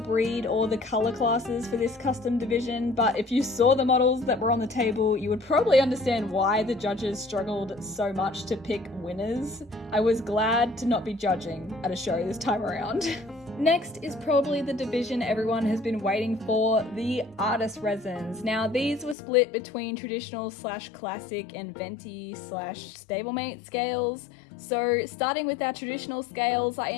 or the colour classes for this custom division, but if you saw the models that were on the table, you would probably understand why the judges struggled so much to pick winners. I was glad to not be judging at a show this time around. Next is probably the division everyone has been waiting for, the artist resins. Now these were split between traditional / classic and venti / stablemate scales. So starting with our traditional scales, I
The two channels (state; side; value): drops out; right; at 19.2 s